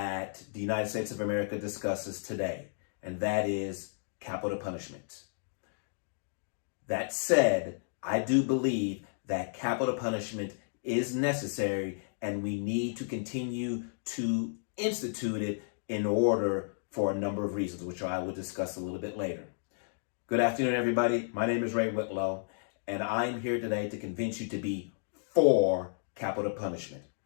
the United States of America discusses today, and that is capital punishment. That said, I do believe that capital punishment is necessary, and we need to continue to institute it in order for a number of reasons, which I will discuss a little bit later. Good afternoon, everybody. My name is Ray Whitlow, and I'm here today to convince you to be for capital punishment.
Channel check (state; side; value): silent; right; digital silence